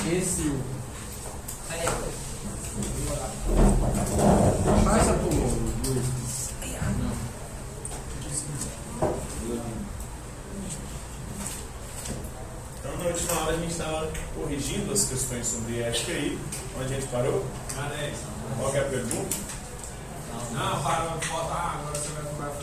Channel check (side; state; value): both; identical; correlation 1.00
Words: Então, na última hora a gente estava corrigindo as questões sobre ética aí. Onde a gente parou? Qual que é a pergunta? Não, para faltar, agora você vai